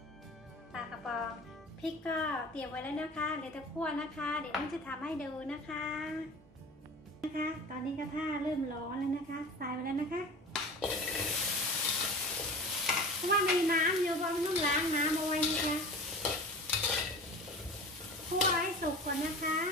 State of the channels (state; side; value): normal; both; correlation 0.37